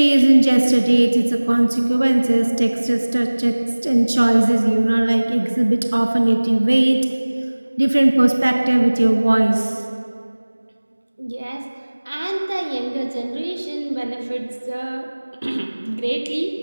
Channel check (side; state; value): both; inverted; correlation -1.00